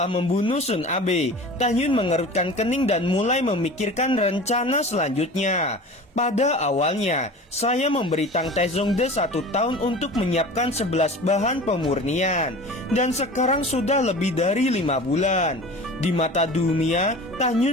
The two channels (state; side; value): normal; both; correlation 0.38